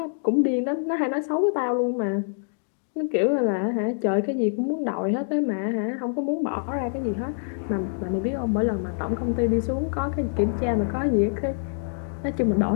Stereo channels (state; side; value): silent; right; digital silence